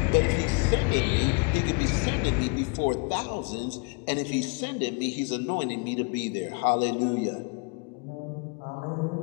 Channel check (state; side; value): quieter; right; 32.1 dB